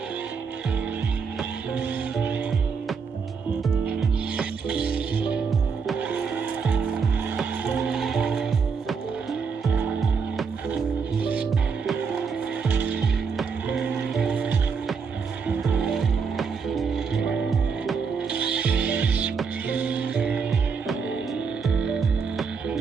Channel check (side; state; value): left; quieter; 5.6 dB